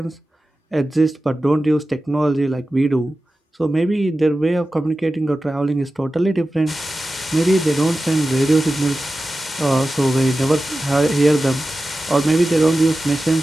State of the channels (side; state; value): both; normal; correlation 0.94